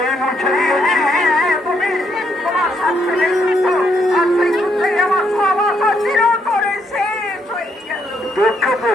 মুছে দিয়েছি। তুমি তোমার সাথে যুদ্ধ আর সেই যুদ্ধে আমার সব আশা চিরতরে শেষ হয়ে গেল। দুঃখ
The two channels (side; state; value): both; normal; correlation 0.74